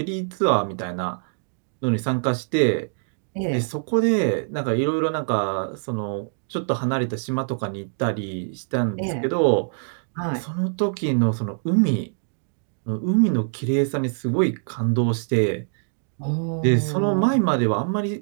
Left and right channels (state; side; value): silent; left; digital silence